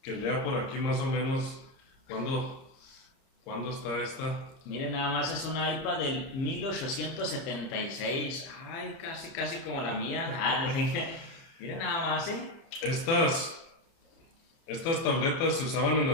lea por aquí más o menos cuándo está esta. Miren, nada más es un iPad del 1876. Ay, casi como la mía. Miren nada más, Estas tabletas se usaban en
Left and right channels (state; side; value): late; right; 30 ms